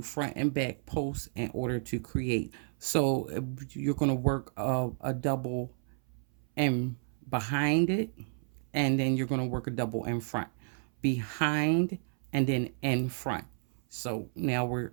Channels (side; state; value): left; silent; 57 dB below the other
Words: front and back posts in order to create. So you're going to work a double in behind it, and then you're going to work a double in front, behind, and then in front. So now we're